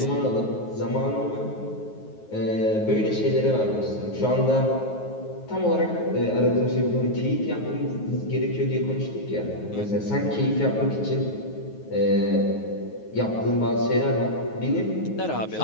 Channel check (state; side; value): late; right; 9.4 ms